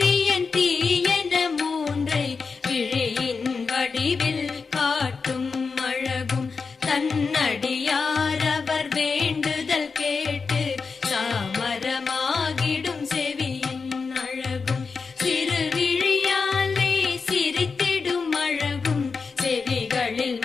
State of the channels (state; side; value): quieter; right; 4.9 dB